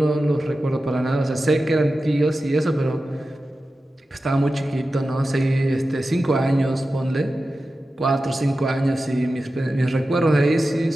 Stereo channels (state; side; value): normal; both; correlation 0.93